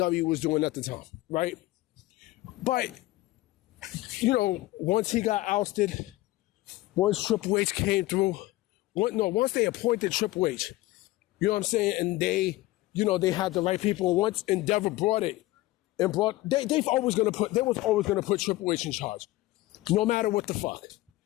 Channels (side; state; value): right; quieter; 18.2 dB